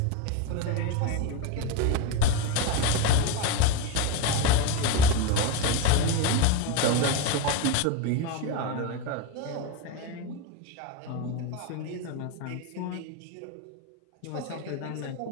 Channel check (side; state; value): both; different; correlation 0.04